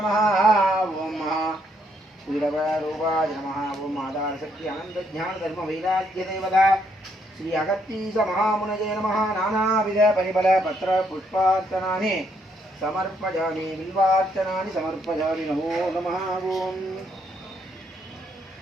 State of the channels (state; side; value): normal; both; correlation 0.73